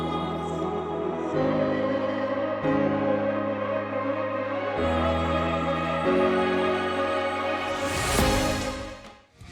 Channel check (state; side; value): identical; both; correlation 1.00